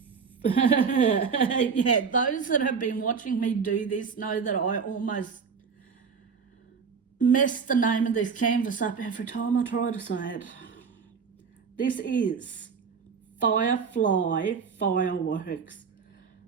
yeah, those that have been watching me do this know that I almost mess the name of this canvas up every time I try to say it. This is Firefly Fireworks.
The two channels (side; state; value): left; quieter; 5.9 dB